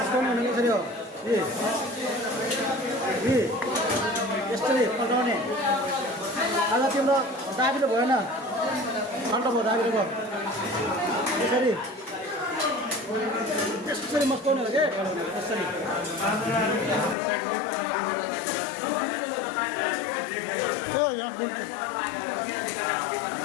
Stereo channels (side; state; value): right; drops out; at 17.2 s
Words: हुने कसरी हो यसरी पल्टाउने आज तिम्रो दाबिलो भएन ठन्डा भयो दाबिलो भयो यसरी यसरी मस्काउने हो कि यसरी